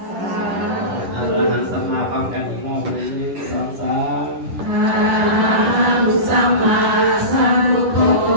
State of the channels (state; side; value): late; left; 10 ms